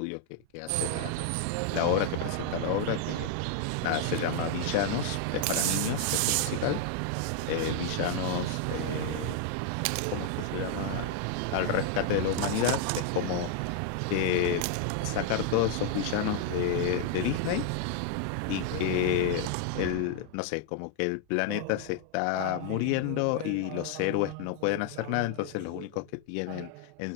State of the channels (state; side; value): different; both; correlation 0.00